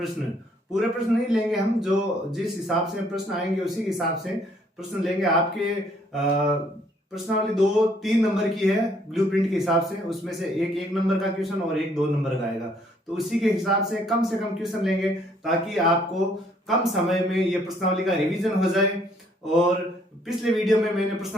पूरे प्रश्न नहीं लेंगे हम, जो जिस हिसाब से प्रश्न आएंगे उसी हिसाब से प्रश्न लेंगे। आपके प्रश्नावली 2 3 नंबर की है ब्लूप्रिंट के हिसाब से, उसमें से एक नंबर का क्वेश्चन और एक 2 नंबर का आएगा। तो उसी के हिसाब से कम क्वेश्चन लेंगे ताकि आपको कम समय में ये प्रश्नावली का रिवीजन हो जाए। और पिछले वीडियो में मैंने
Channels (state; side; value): normal; both; correlation 0.65